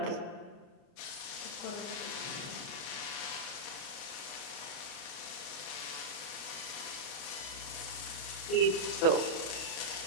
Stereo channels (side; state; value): right; late; 29 ms